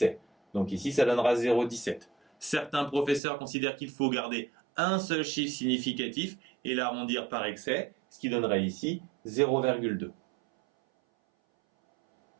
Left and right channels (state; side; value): drops out; left; at 3.2 s